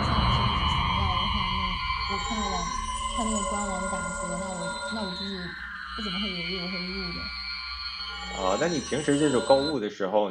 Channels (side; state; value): both; identical; correlation 1.00